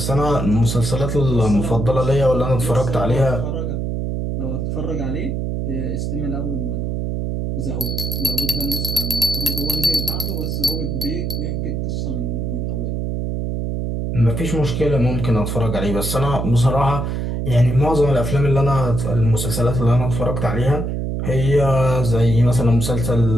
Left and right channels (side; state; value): right; noise; hum, 2 dB below the sound